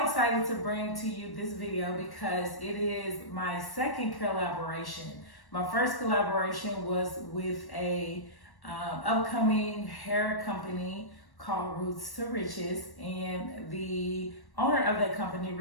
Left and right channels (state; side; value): late; right; 1.1 ms